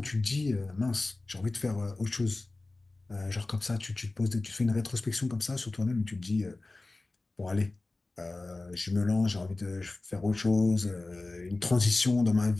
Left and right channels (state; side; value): quieter; right; 3.1 dB